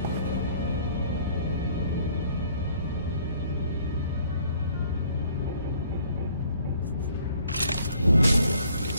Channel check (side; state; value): both; inverted; correlation -0.60